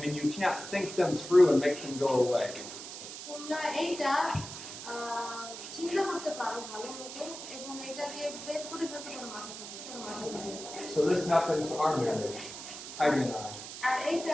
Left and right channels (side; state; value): right; noise; hiss, 10 dB below the sound